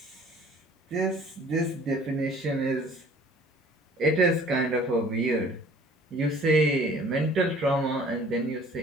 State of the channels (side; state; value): both; normal; correlation 0.52